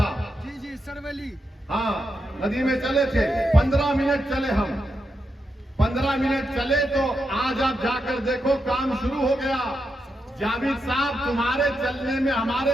जी सरवली, हाँ, नदी में चले थे। 15 मिनट चले हम, 15 मिनट चले तो आज आप जाकर देखो काम शुरू हो गया। जावेद साहब, तुम्हारे चलने में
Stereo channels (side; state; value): both; normal; correlation 0.85